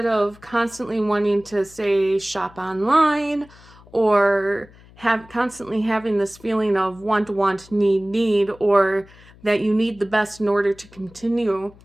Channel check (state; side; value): noise; left; hum, 24 dB below the sound